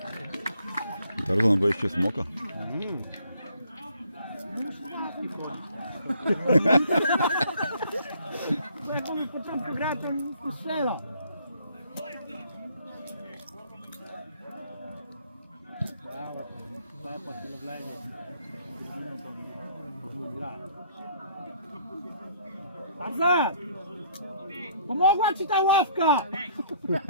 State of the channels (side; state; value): both; inverted; correlation -0.62